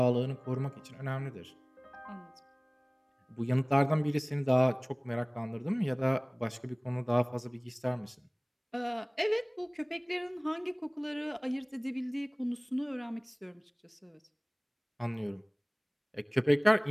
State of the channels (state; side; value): identical; both; correlation 1.00